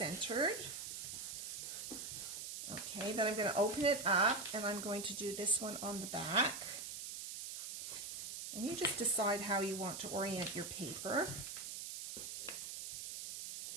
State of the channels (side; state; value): right; noise; hiss, 6 dB below the sound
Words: Okay, then I'm going to open it up and I'm going to do this one on the back. And you just decide how you want to orient your paper.